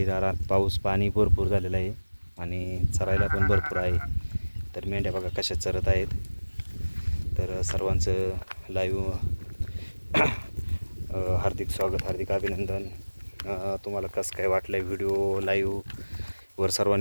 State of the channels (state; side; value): inverted; both; correlation -1.00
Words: पाऊस पाणी भरपूर झालेलं आहे आणि चरायला पण भरपूर आहे. तर मेंढ्या बघा कशा चरत आहेत. तर सर्वांचं लाईव्ह हार्दिक स्वागत, हार्दिक अभिनंदन. तुम्हाला कसं काय वाटलं आहे व्हिडिओ लाईव्हवर